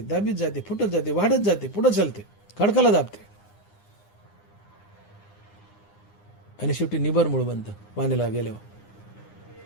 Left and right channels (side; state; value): right; late; 9.8 ms